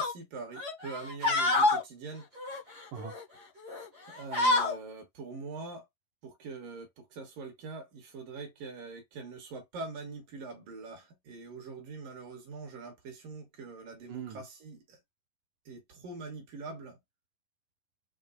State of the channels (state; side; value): late; left; 11 ms